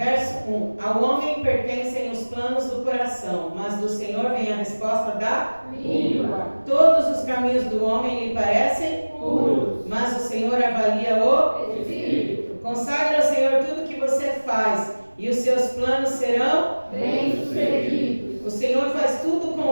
1. Ao homem pertencem os planos do coração, mas do Senhor vem a resposta da língua. Todos os caminhos do homem lhe parecem puros, mas o Senhor avalia o espírito. Consagre ao Senhor tudo que você faz, e os seus planos serão bem-sucedidos. O Senhor faz tudo com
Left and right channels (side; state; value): both; inverted; correlation -1.00